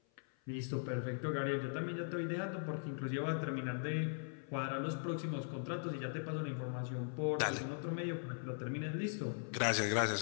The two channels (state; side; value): silent; right; 51 dB below the other